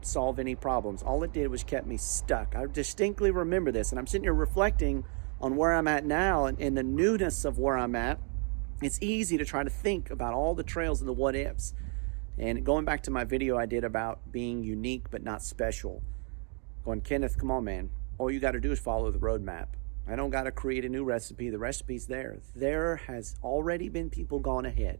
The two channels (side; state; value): left; quieter; 39.6 dB